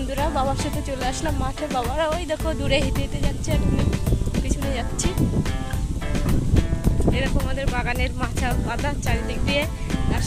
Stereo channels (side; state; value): both; identical; correlation 1.00